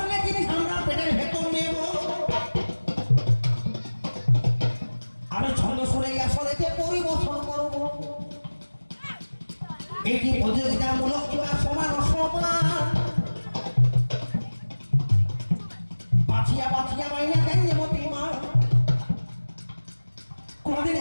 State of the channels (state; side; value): inverted; both; correlation -1.00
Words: জিনিস আমরা পেটের ভেতর নেব আমি ছন্দ শুনে আসলেতে পরিবর্তন করব এটি প্রতিযোগিতামূলক কিংবা সমান অসমান বাছিয়া বাছিয়া মাইনা দেন মতি মা কোনদিন